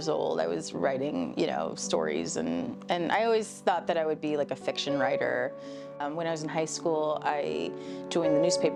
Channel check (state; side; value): identical; both; correlation 1.00